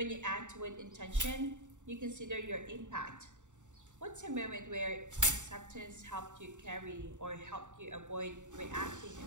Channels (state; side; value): late; left; 0.85 ms